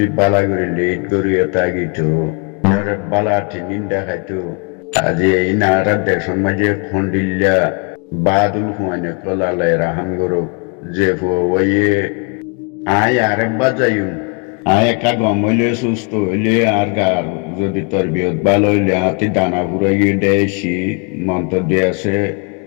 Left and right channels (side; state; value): right; quieter; 35.0 dB